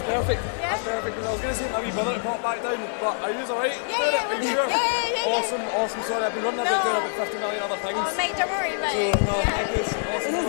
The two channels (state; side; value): silent; right; 62 dB below the other